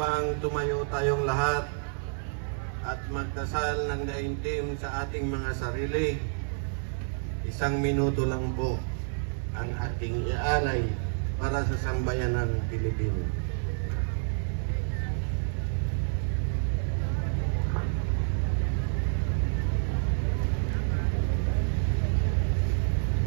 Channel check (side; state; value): left; silent; digital silence